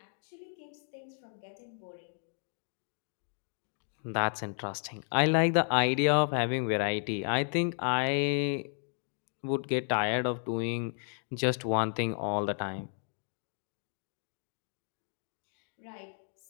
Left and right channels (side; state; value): right; silent; 56 dB below the other